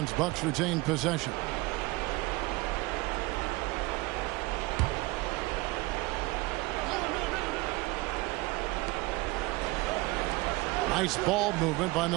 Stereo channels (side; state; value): left; quieter; 22.0 dB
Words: Bucks retain possession. Nice ball movement by